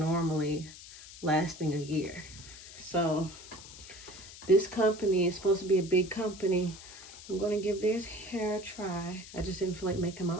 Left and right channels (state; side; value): noise; left; hiss, 16 dB below the sound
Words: lasting a year, so this company is supposed to be a big company. I'm going to give their hair a try. I just didn't feel like making my